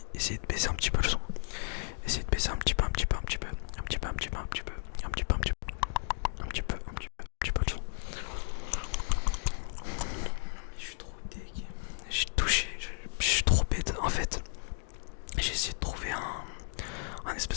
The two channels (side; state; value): right; silent; digital silence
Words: essayez de baisser un petit peu le son. Essayez de baisser un petit peu le son. Je suis trop dégueu. J'ai touché, je suis trop bête. En fait, j'ai essayé de trouver un